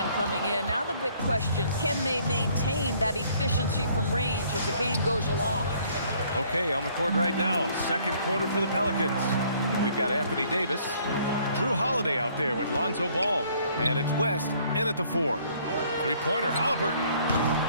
coming in. Now the big question, can they maintain that efficiency from range as the game goes along? Okay, on the court right now, second quarter for the Pelicans. We've got Anthony Davis, Drew Holiday out there with Lonzo Ball, and it's West in at the 4. Three-pointer, Halliburton.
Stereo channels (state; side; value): inverted; both; correlation -0.61